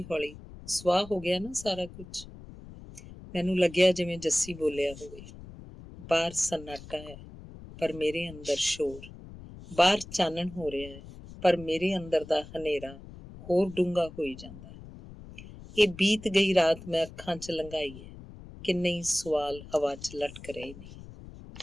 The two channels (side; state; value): left; noise; rumble, 16 dB below the sound